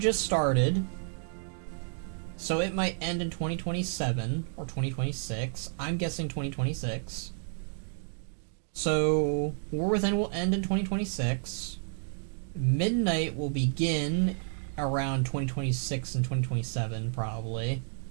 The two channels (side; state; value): left; silent; digital silence